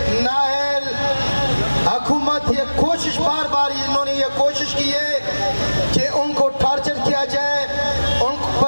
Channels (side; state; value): both; inverted; correlation -1.00